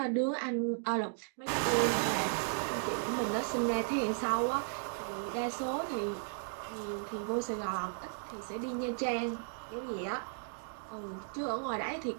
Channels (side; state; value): left; silent; digital silence